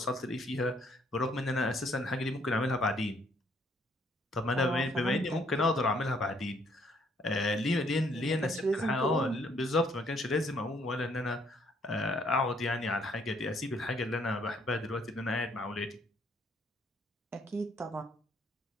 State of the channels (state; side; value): normal; both; correlation 0.66